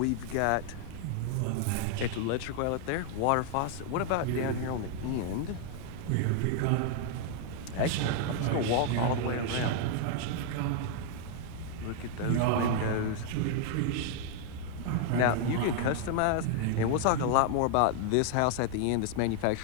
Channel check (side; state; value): both; different; correlation 0.00